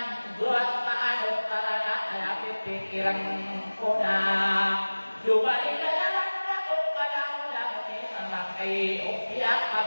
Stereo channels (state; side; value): inverted; both; correlation -1.00